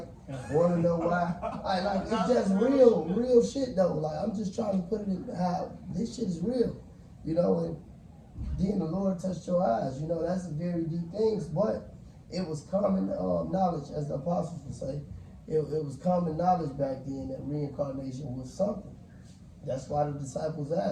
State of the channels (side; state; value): both; identical; correlation 1.00